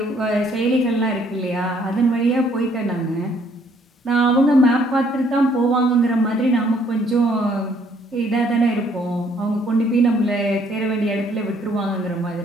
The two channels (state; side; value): normal; both; correlation 0.64